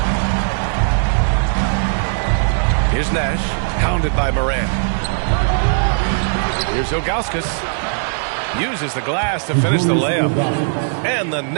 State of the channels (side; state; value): left; silent; 67 dB below the other